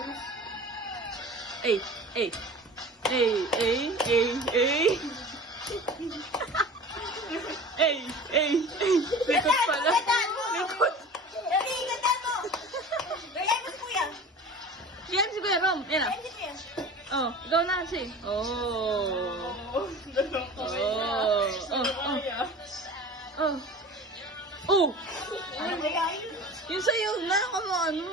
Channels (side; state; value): both; normal; correlation 0.38